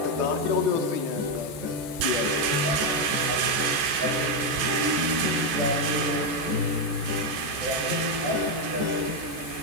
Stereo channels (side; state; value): left; late; 14 ms